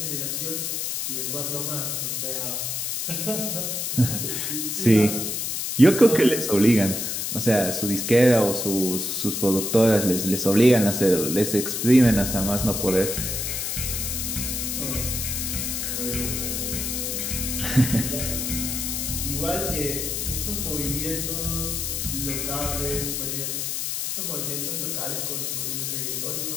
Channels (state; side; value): noise; left; hiss, 2 dB below the sound